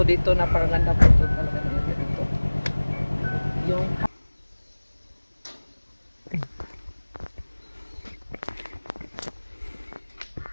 dito. Napakaganda po ito talaga dito. Yung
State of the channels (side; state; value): both; inverted; correlation -1.00